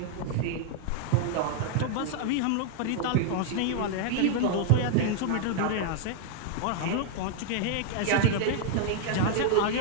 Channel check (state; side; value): different; both; correlation -0.01